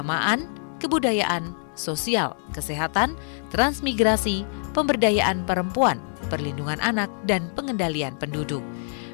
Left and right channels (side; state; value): right; silent; digital silence